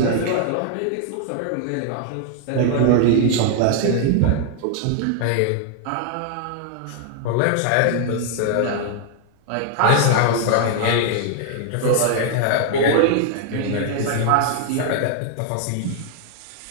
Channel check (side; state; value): both; different; correlation 0.00